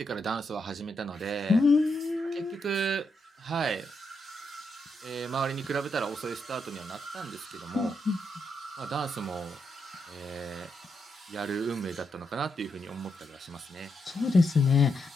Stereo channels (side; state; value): both; normal; correlation 0.82